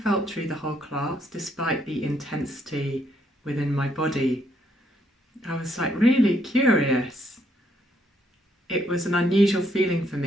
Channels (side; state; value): both; normal; correlation 0.72